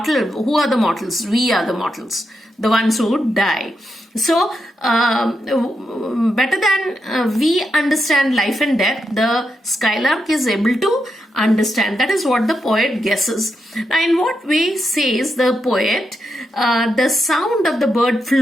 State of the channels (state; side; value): normal; both; correlation 0.84